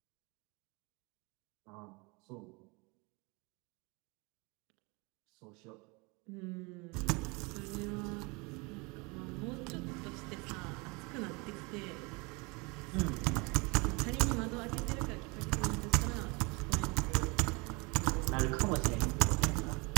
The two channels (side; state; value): left; quieter; 28.0 dB